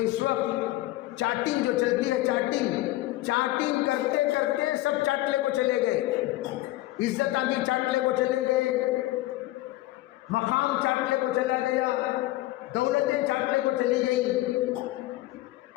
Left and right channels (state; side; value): quieter; right; 17.2 dB